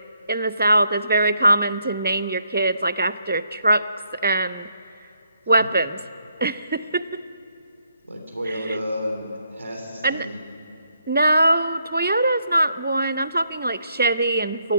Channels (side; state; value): both; inverted; correlation -0.75